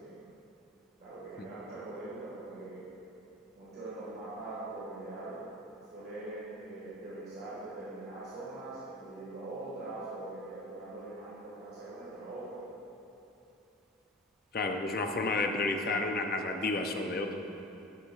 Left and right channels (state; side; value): normal; both; correlation 0.36